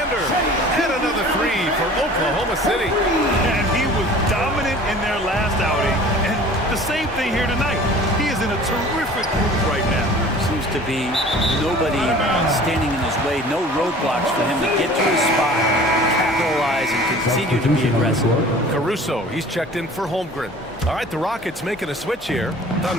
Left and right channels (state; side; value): normal; both; correlation 0.45